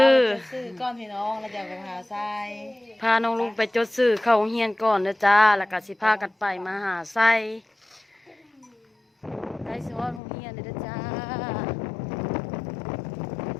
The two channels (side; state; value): right; drops out; at 10.2 s